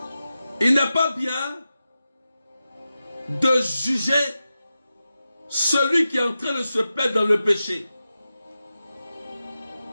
il n'est pas bien de juger celui qui est en train de se perdre dans le péché.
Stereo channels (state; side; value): inverted; both; correlation -0.92